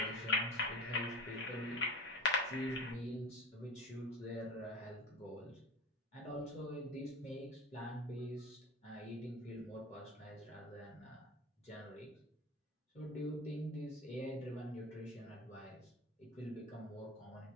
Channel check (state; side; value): normal; both; correlation 0.31